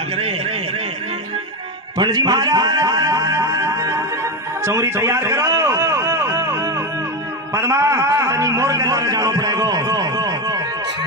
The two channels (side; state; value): both; normal; correlation 0.14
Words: करे। पंडित जी महाराज चौरी तैयार करो पद्मा तनी मोर के द्वारा जानो पड़ेगो